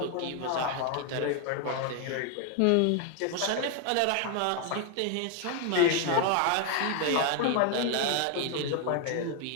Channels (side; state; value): both; different; correlation 0.01